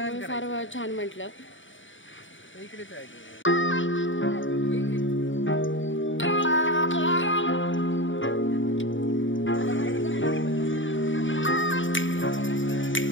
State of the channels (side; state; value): right; late; 0.56 ms